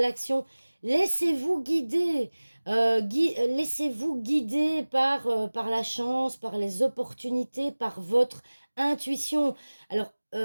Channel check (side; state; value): both; inverted; correlation -1.00